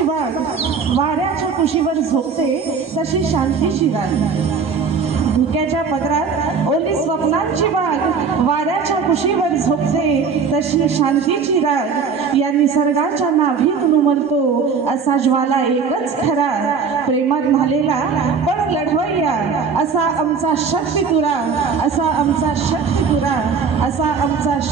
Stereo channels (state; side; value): quieter; left; 5.7 dB